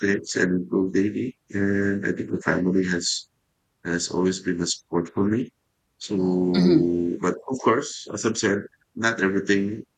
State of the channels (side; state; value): both; identical; correlation 1.00